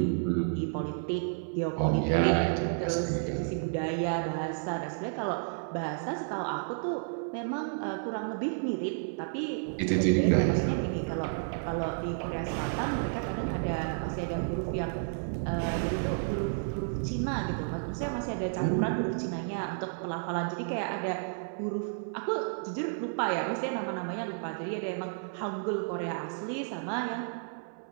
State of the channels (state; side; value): silent; left; 57 dB below the other